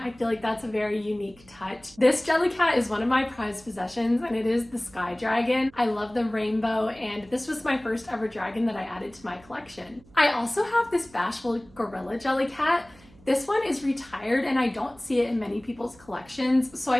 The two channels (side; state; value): right; noise; hum, 25 dB below the sound